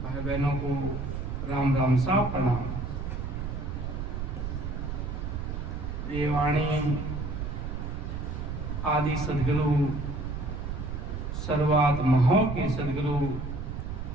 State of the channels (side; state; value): right; noise; rumble, 4 dB below the sound